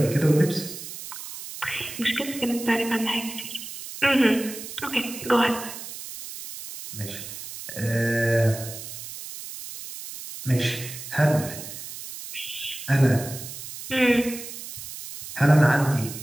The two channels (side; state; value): right; noise; hiss, 11 dB below the sound